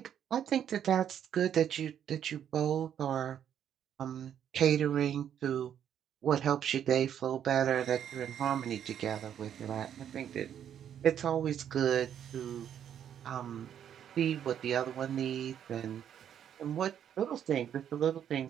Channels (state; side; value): quieter; left; 9.4 dB